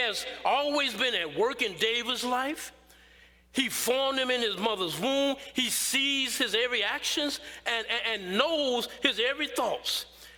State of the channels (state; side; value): identical; both; correlation 1.00